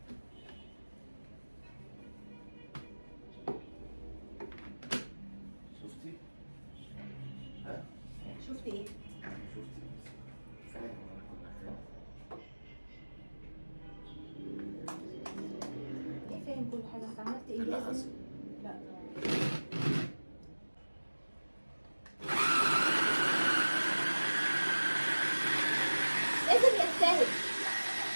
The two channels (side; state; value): both; inverted; correlation -1.00